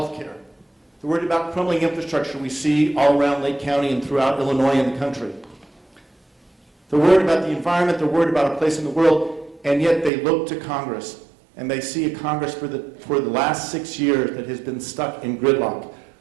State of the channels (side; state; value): left; drops out; at 10.1 s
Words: care. They're worried about crumbling infrastructure we see all around Lake County and throughout Illinois and the country. They're worried about the environment. They're worried about a place in the world, and yet they look to Congress, and they see a Congress for the last 6 years that has been stuck in gridlock,